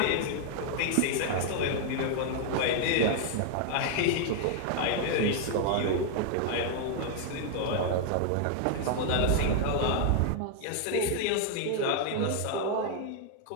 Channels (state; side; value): different; both; correlation 0.00